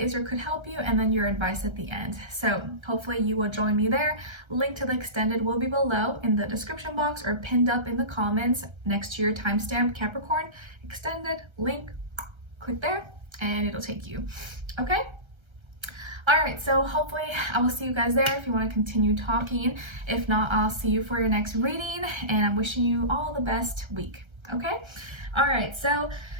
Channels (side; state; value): left; late; 1.3 ms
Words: or could help you, and then your advice at the end. So hopefully you will join me there. Link to the extended will be below in the description box or pinned up in the comments next to your timestamp, Capricorn.Extended link. Click there and it'll take you. Okay? All right, so hopefully I will see you guys there if you want to continue talking. If not, I'll see you for your next reading, and I'm wishing you all the best week, okay? All right, so